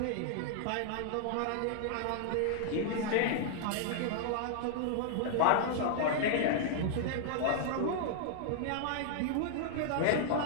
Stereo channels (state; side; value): different; both; correlation -0.01